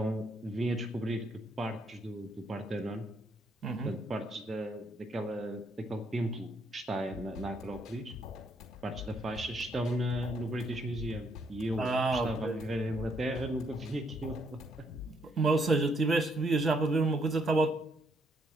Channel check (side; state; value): both; normal; correlation 0.72